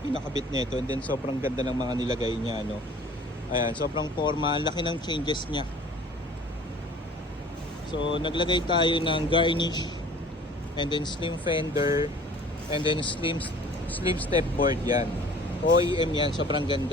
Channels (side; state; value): both; normal; correlation 0.48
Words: pinakabit nito and then sobrang ganda ng mga nilagay niya, no. Ayan, sobrang forma, ang laki ng changes niya. So naglagay tayo ng garnish and then slim fender and then slim step board yan. OEM yan, sobrang